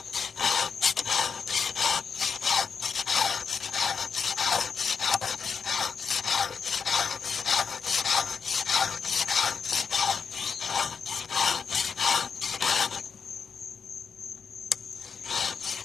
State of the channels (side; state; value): right; quieter; 6.0 dB